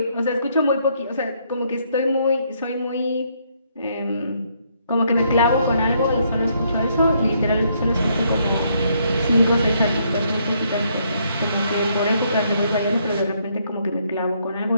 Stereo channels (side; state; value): both; inverted; correlation -0.71